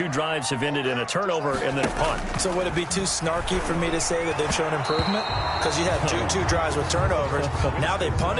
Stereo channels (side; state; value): both; identical; correlation 1.00